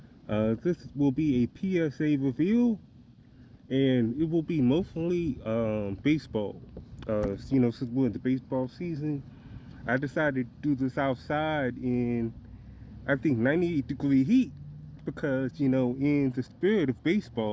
This will be a PSA reveal, and it will be mostly baseball. Since we're in the baseball season, I decided to do this outside in, I think, 98-degree heat because, in the spirit of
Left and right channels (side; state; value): both; identical; correlation 1.00